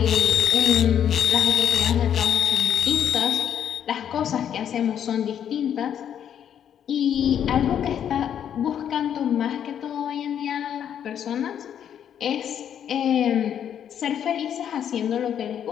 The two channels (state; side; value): quieter; right; 9.2 dB